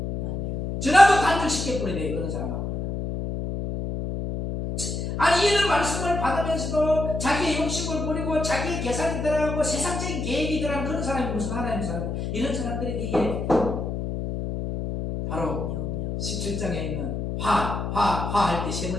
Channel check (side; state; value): left; noise; hum, 3 dB below the sound